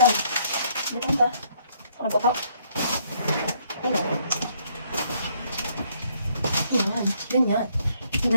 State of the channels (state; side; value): inverted; both; correlation -0.68